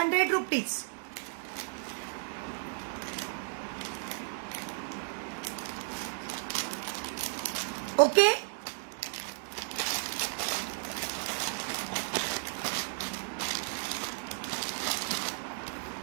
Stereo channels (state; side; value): silent; left; digital silence